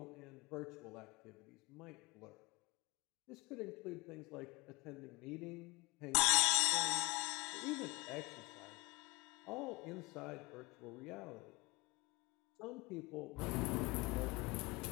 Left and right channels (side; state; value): right; quieter; 25.7 dB